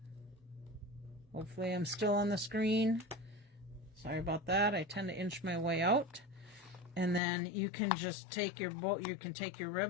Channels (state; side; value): drops out; right; at 7.2 s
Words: Hopefully I'm still on the screen. Sorry about that, I tend to inch my way out. And then you can just take your bow, you can take your